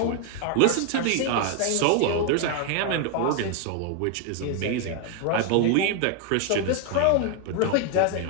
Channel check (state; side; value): different; both; correlation 0.00